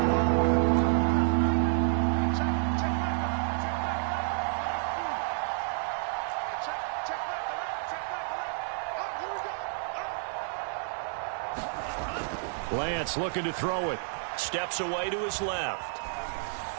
Lance looking to throw it. Steps away to his left.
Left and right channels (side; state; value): left; silent; digital silence